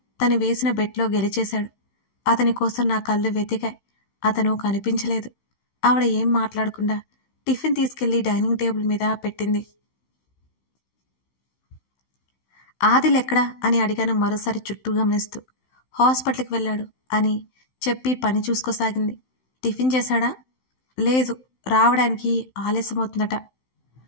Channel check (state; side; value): late; right; 16 ms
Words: తను వేసిన బెట్లో గెలిచేశాడు. అతని కోసం నా కళ్ళు వెతికాయి. అతను కనిపించలేదు. ఆవిడ ఏం మాట్లాడకుండా టిఫిన్ తీసుకెళ్లి డైనింగ్ టేబుల్ మీద పెట్టింది. ఆదిల్ ఎక్కడా అని అడిగాను మరోసారి చుట్టూ గమనిస్తూ. హాస్పిటల్కి వెళ్ళాడు అని చెప్పి పని చూసుకోసాగింది. టిఫిన్ చేశాడా? లేదు, రావడానికి ఆలస్యమవుతుందట.